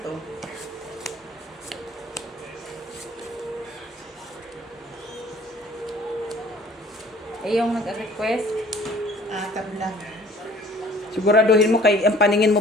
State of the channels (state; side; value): normal; both; correlation 0.52